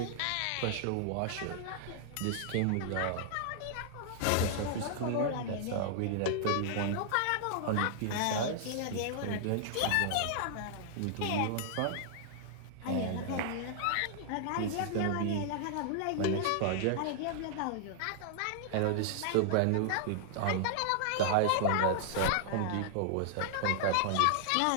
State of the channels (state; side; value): different; both; correlation -0.01